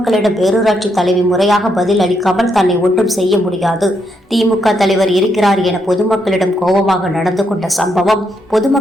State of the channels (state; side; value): normal; both; correlation 0.78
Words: பேரூராட்சி தலைவி முறையாக பதில் அளிக்காமல் தன்னை ஒன்றும் செய்ய முடியாது, திமுக தலைவர் இருக்கிறார் என பொதுமக்களிடம் கோபமாக நடந்து கொண்ட சம்பவம்